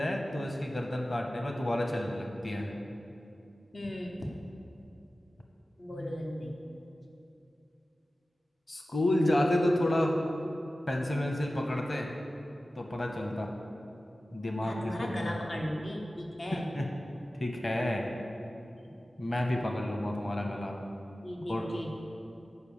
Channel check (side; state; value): both; normal; correlation 0.96